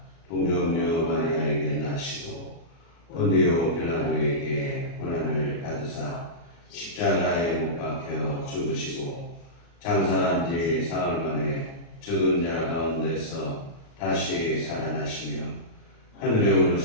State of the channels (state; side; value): late; right; 36 ms